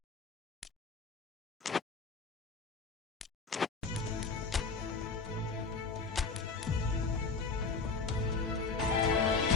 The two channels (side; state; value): right; quieter; 4.5 dB